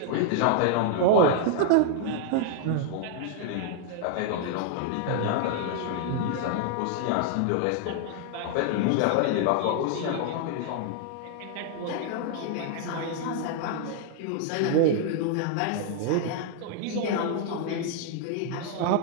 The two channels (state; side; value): different; both; correlation 0.00